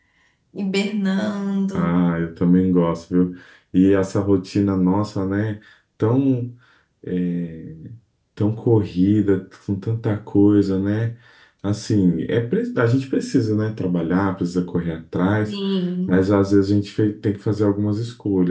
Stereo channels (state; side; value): identical; both; correlation 1.00